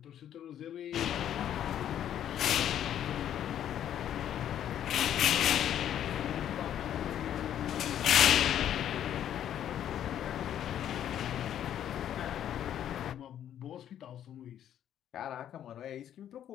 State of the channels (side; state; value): right; quieter; 10.5 dB